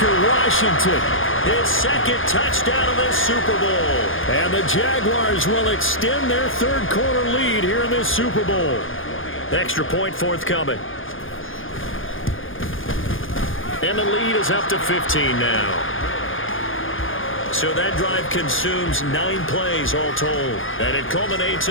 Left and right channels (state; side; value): late; right; 0.58 ms